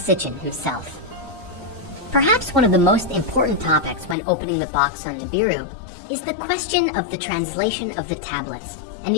himself. Perhaps one of the most important topics when opening the box on Nibiru is the question of the translation of the tablets and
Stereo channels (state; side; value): drops out; right; at 4.2 s